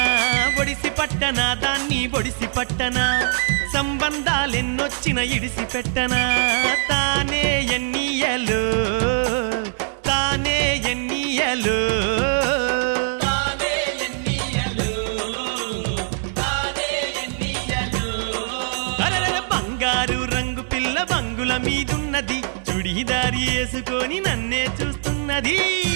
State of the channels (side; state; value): left; silent; digital silence